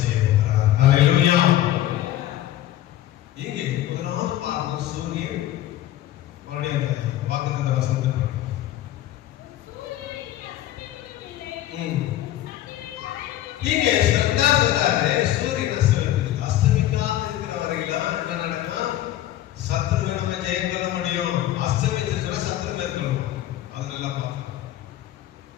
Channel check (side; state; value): right; quieter; 13.4 dB